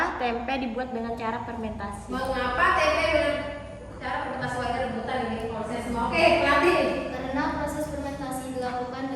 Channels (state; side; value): identical; both; correlation 1.00